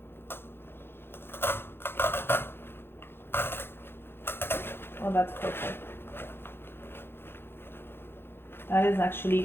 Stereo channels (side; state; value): right; late; 0.11 ms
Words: Oh, that's perfect. That is